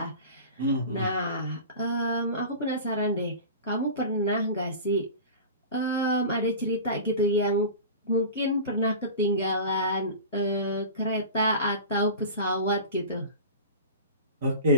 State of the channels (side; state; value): both; inverted; correlation -0.34